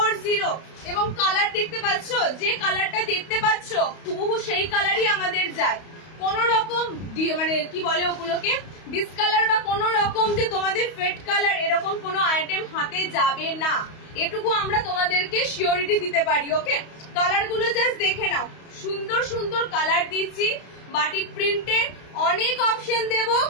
এবং কালার দেখতে পাচ্ছ, যে কালারটা দেখতে পাচ্ছ হুবহু সেই কালারই আমাদের যায়। কোন রকম মানে কি বলে ওগুলোকে ডিসকালার বা কোন রকম যে তোমাদের ফেড কালার এরকম কোনো আইটেম হাতে যাবে না, এটুকু আমরা তোমাদেরকে সিওরিটি দিতে পারি। ওকে কালার গুলো জাস্ট দেখে নাও, সুন্দর সুন্দর কালার দিচ্ছি বাটিক প্রিন্টে। অনেক অপশন দেব,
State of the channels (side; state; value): right; late; 31 ms